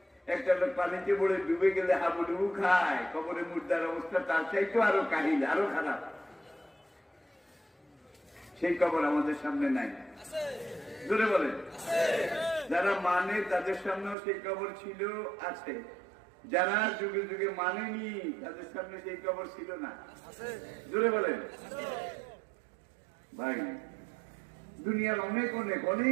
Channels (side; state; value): left; drops out; at 14.2 s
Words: একটা লোক পানিতে পড়ে ডুবে গেলে হাবুডুবু খায়, কবরে মুর্দার অবস্থা তার চাইতে আরো কাহিল, আরো খারাপ। সেই কবর আমাদের সামনে নাই, জোরে বলেন। যারা মানে তাদের সামনেও সেই কবর ছিল, আছে। যারা যুগে যুগে মানেনি তাদের সামনে সেই কবর ছিল না, জোরে বলেন। ভাই, দুনিয়ার অনেক অনেক